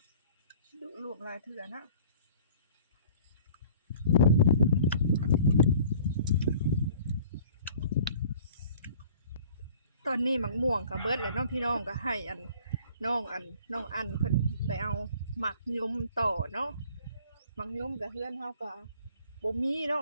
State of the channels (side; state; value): both; inverted; correlation -0.51